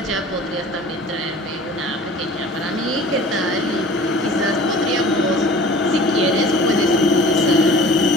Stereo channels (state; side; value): normal; both; correlation 0.45